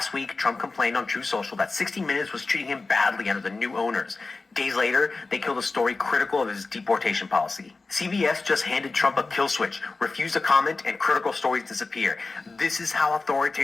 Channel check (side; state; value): right; quieter; 3.7 dB